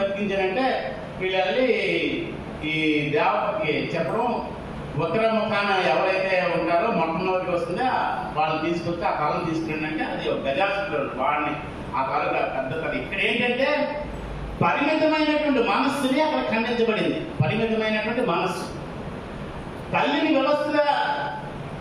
వీళ్ళు వెళ్ళి ఈ దేవతకి చెప్పడం, ఉత్తర ముఖాన ఎవరైతే ఉంటారో మొట్టమొదటికి వస్తుందో వాళ్ళని తీసుకొచ్చి ఆ తలను తీసుకురండి అంటే అది ఒక గజాసుడు వాడిని ఆ తల పెద్ద తల. ఇక్కడ ఏంటంటే పరిమితమైనటువంటి మనస్సుని అక్కడ ఖండించబడింది. పరిమితమైనటువంటి మనస్సు తల్లిని వ్యవస్థగా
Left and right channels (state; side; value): identical; both; correlation 1.00